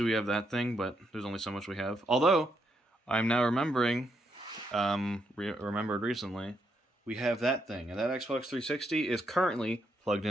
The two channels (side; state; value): both; normal; correlation 0.78